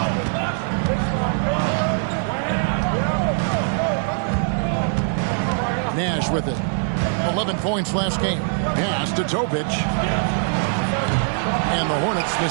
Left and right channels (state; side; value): silent; left; digital silence